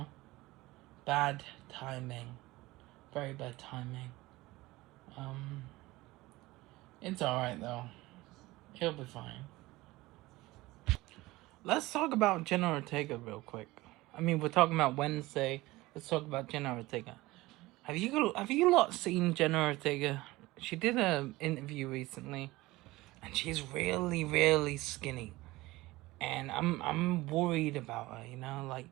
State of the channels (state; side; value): quieter; left; 19.5 dB